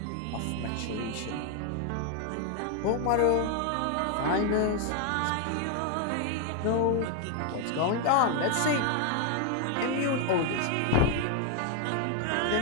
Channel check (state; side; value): different; both; correlation 0.00